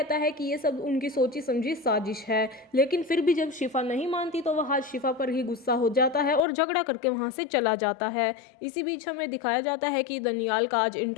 है कि ये सब उनकी सोची समझी साजिश है। लेकिन फिर भी जब शिफा नहीं मानती तो वहाज शिफा पर ही गुस्सा हो जाता है और झगड़ा करके वहाँ से चला जाता है। इसी बीच हमें दिखाया जाता है कि दनियाल का आज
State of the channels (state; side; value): drops out; right; at 6.4 s